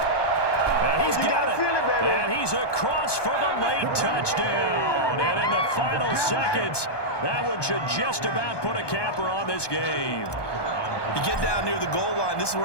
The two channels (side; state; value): right; late; 1.2 ms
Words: And he's got it. And he's across for the late touchdown. And in the final seconds, that one should just about put a capper on this game. You get down near the goal line, this is